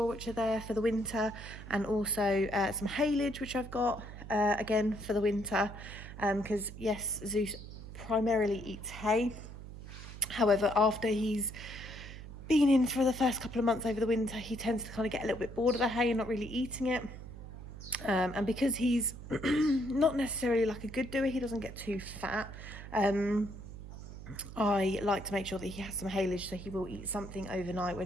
which are there for the winter. And also some haylage, which I've got again for the winter. Because yes, Zeus primarily eats hay. However, after he's been in for the first couple of months over the winter, he tends to kind of get a little bit bored of the hay and not really eating it. And because he's not necessarily like a good doer, he doesn't get too fat. I like to make sure that he has some haylage, so he will eat something overnight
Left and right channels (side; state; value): right; noise; hum, 12 dB below the sound